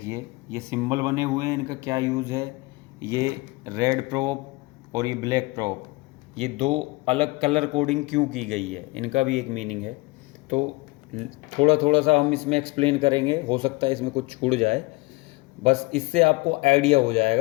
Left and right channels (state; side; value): quieter; right; 23.5 dB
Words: ये सिंबल बने हुए हैं, इनका क्या यूज़ है। ये रेड प्रोब और ये ब्लैक प्रोब, ये दो अलग कलर कोडिंग क्यों की गई है, इनका भी एक मीनिंग है। तो थोड़ा थोड़ा सा हम इसमें एक्सप्लेन करेंगे, हो सकता है इसमें कुछ छूट जाए, बस इससे आपको आइडिया हो